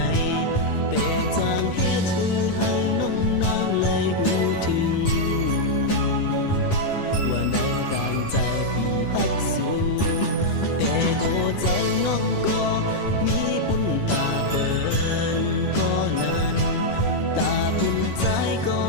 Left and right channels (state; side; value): late; right; 11 ms